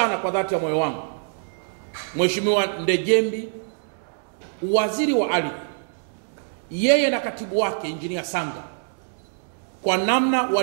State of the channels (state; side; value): silent; left; digital silence